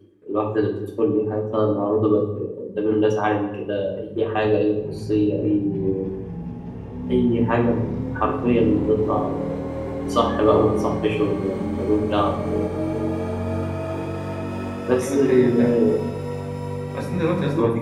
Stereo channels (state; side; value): identical; both; correlation 1.00